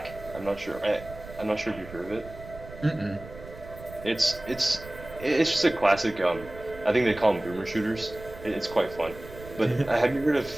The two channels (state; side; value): noise; right; rumble, 16 dB below the sound